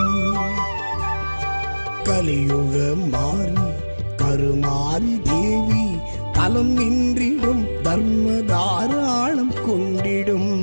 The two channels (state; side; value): inverted; both; correlation -1.00